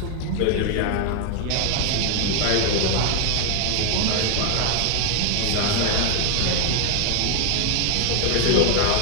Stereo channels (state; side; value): different; both; correlation 0.00